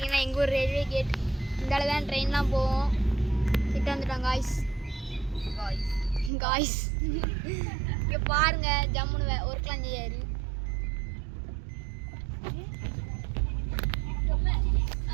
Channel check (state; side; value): drops out; left; at 6.3 s